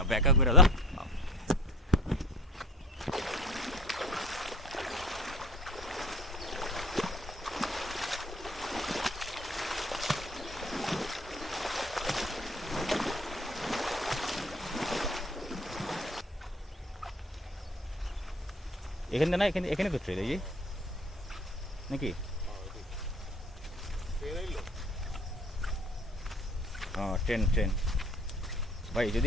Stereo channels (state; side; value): normal; both; correlation 0.47